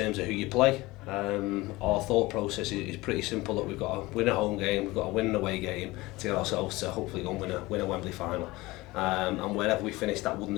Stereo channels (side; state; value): right; quieter; 20.5 dB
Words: of who you play. Our thought process is pretty simple, that we've got to win a home game, we've got to win an away game to get ourselves to hopefully go and win a Wembley final. And wherever we finished, that wouldn't